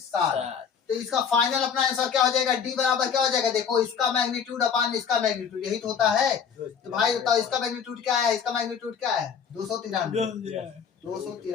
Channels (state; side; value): quieter; right; 7.0 dB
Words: तो इसका फाइनल अपना आंसर क्या हो जाएगा, डी बराबर क्या हो जाएगा, देखो इसका मैग्नीट्यूड अपान इसका मैग्नीट्यूड, यही तो होता है। तो भाई बताओ इसका मैग्नीट्यूड क्या है, इसका मैग्नीट्यूड क्या है